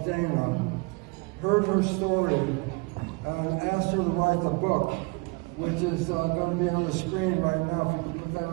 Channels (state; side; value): quieter; left; 28.5 dB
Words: Dana, heard her story and asked her to write the book, which is going to be on the screen right now. If you can put